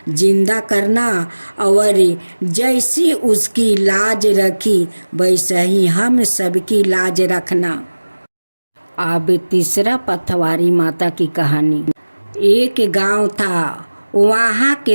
जिंदा करना, और जैसी उसकी लाज रखी वैसा ही हम सबकी लाज रखना। अब तीसरा पतवारी माता की कहानी। एक गांव था, वहाँ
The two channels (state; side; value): inverted; both; correlation -1.00